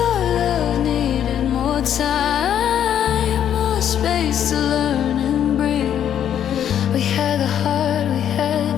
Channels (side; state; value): right; quieter; 9.7 dB